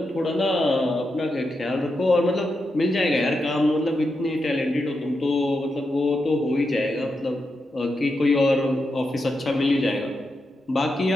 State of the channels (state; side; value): normal; both; correlation 0.86